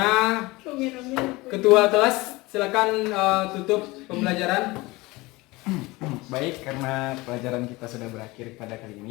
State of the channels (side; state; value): right; quieter; 21.9 dB